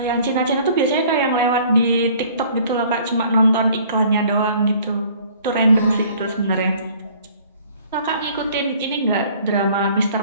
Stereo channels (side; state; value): both; inverted; correlation -0.54